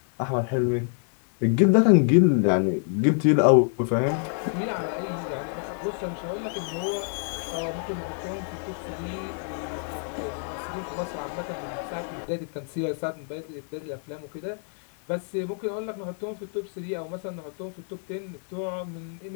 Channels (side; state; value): right; silent; 60 dB below the other